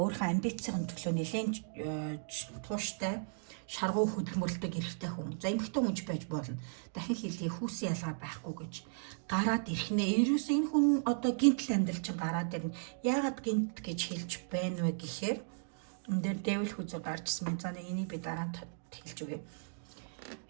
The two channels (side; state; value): left; silent; digital silence